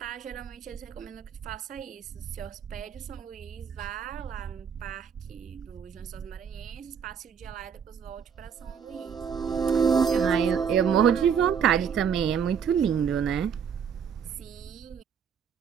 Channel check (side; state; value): left; quieter; 7.2 dB